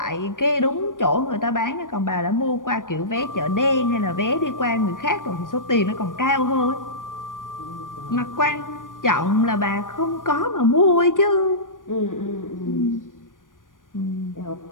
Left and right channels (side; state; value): right; late; 0.88 ms